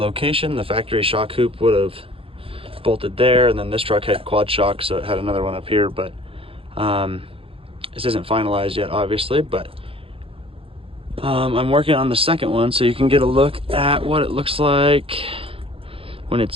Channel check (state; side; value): late; left; 0.27 ms